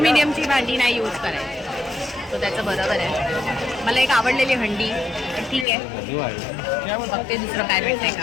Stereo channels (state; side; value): drops out; right; at 5.7 s